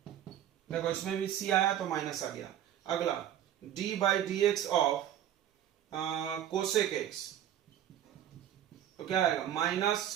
देखो इसमें भी c आया तो माइनस आ गया। अगला d by D x of cosec x, तो क्या आएगा? Minus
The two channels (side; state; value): left; quieter; 10.9 dB